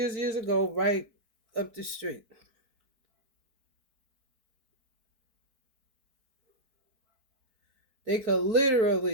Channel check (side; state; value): left; late; 4.6 ms